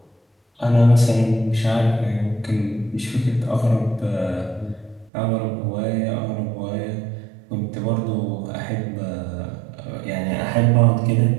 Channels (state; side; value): drops out; left; at 5.1 s